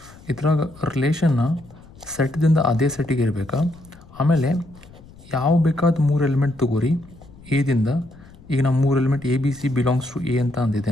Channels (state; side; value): noise; left; rumble, 22 dB below the sound